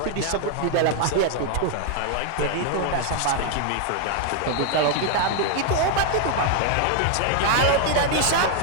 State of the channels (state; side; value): different; both; correlation 0.00